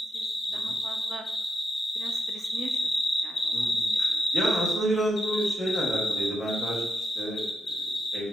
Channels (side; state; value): both; normal; correlation 0.83